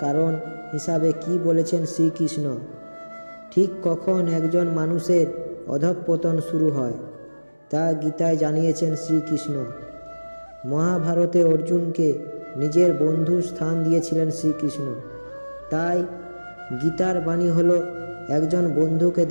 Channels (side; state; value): both; inverted; correlation -1.00